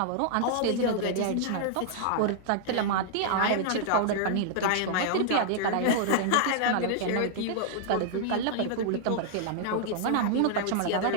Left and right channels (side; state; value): both; different; correlation -0.01